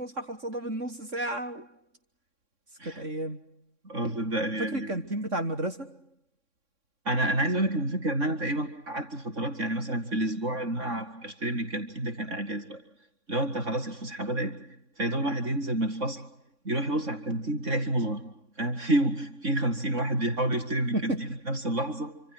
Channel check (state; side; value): late; left; 3.6 ms